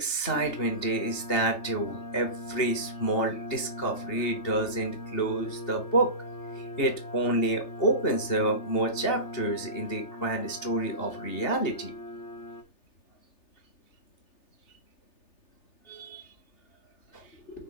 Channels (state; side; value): late; right; 3.3 ms